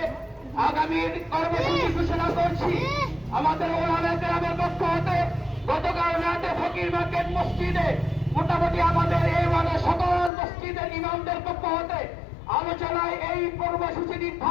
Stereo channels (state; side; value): drops out; right; at 10.3 s